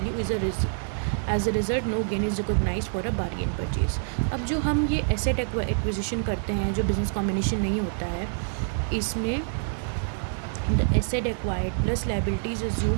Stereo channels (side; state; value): left; silent; 60 dB below the other